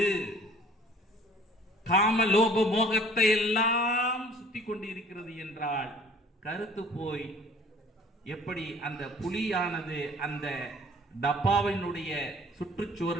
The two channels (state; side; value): normal; both; correlation 0.52